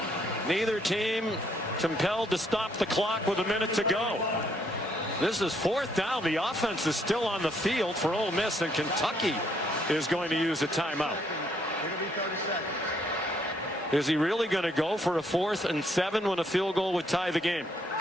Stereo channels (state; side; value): normal; both; correlation 0.70